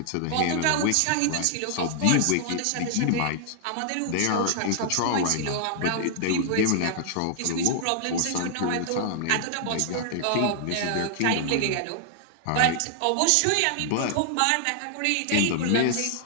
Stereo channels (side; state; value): both; different; correlation 0.00